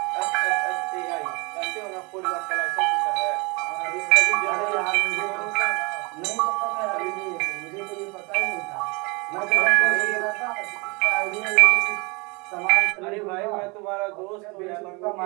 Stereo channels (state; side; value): quieter; left; 28.8 dB